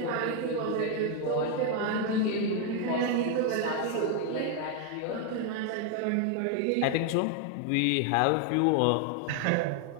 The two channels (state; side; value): different; both; correlation 0.01